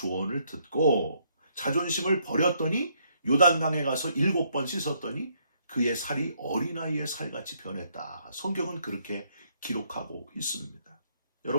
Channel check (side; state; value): both; inverted; correlation -0.71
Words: 듣고 자존심을 버렸더니 요단강에 가서 7번 씻었더니 그의 살이 어린아이의 살같이 변했다. 성경은 그렇게 기록하고 있습니다.